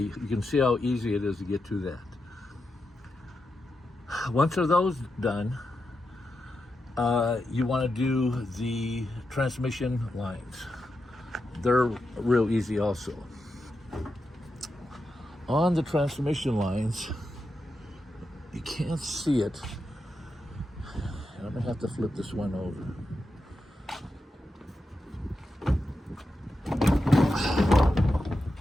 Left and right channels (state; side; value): normal; both; correlation 0.88